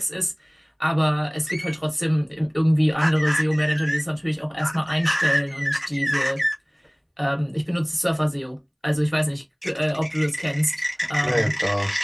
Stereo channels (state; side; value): identical; both; correlation 1.00